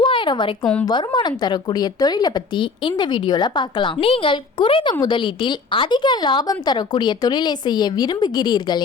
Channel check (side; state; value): right; quieter; 4.6 dB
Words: வரைக்கும் வருமானம் தரக்கூடிய தொழிலை பத்தி இந்த வீடியோல பார்க்கலாம். நீங்கள் குறைந்த முதலீட்டில் அதிக லாபம் தரக்கூடிய தொழிலை செய்ய விரும்புகிறீர்கள்